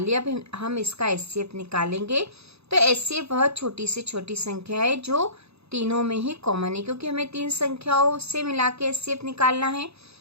लिया। अब हम इसका HCF निकालेंगे। तो HCF वह छोटी से छोटी संख्या है जो तीनों में ही कॉमन है, क्योंकि हमें 3 संख्याओं से मिला के HCF निकालना है।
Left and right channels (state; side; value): late; left; 0.79 ms